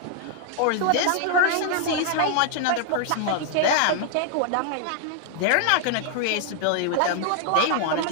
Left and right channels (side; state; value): both; different; correlation 0.00